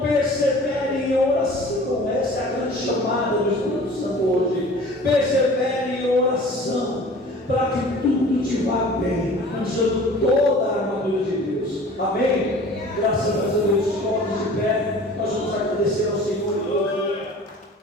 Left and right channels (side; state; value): both; normal; correlation 0.45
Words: persevere em oração. Essa é a grande chamada do Espírito Santo hoje. Persevere em oração, para que tudo te vá bem, usando toda a armadura de Deus. Amém? Graças a Deus, todos de pé, nós vamos agradecer ao Senhor.